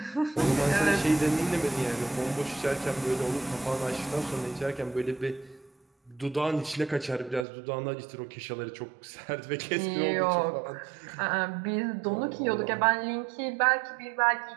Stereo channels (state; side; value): drops out; left; at 7.5 s